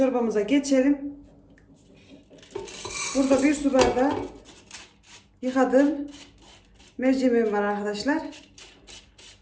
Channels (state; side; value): identical; both; correlation 1.00